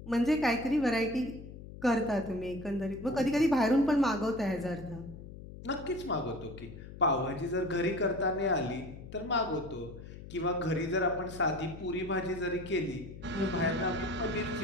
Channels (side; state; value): left; noise; hum, 14 dB below the sound